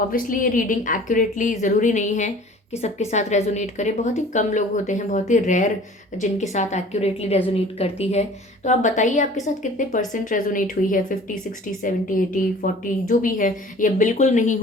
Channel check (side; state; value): both; normal; correlation 0.47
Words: ये रीडिंग एक्यूरेटली ज़रूरी नहीं है कि सबके साथ रेजोनेट करे, बहुत ही कम लोग होते हैं, बहुत ही रेयर जिनके साथ एक्यूरेटली रेजोनेट करती है। तो आप बताइए आपके साथ कितने परसेंट रेजोनेट हुई है, 50, 60, 70, 80, 40 जो भी है, या बिल्कुल नहीं